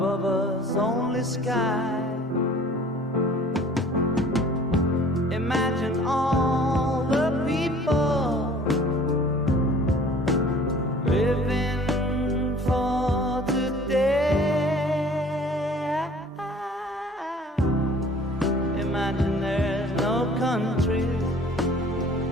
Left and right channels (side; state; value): both; normal; correlation 0.50